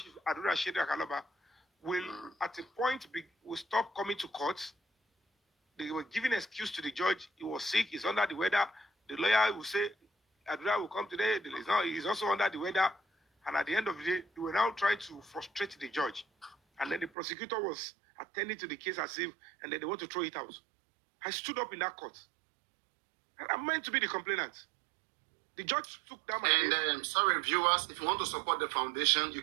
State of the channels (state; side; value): drops out; left; at 17.1 s